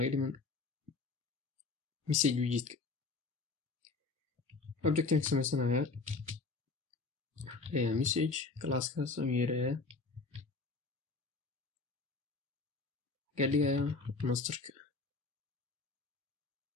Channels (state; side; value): quieter; right; 4.1 dB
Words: dhiman message widgetka. Objectan ka sameysanayaa message classkaas aan yeerayaa ka dhigayaa masterka.